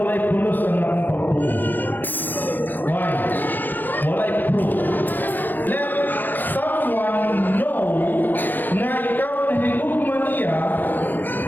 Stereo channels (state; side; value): late; right; 0.088 ms